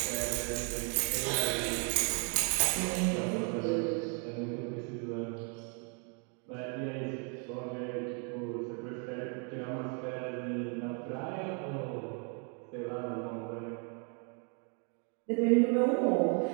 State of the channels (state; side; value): quieter; left; 38.7 dB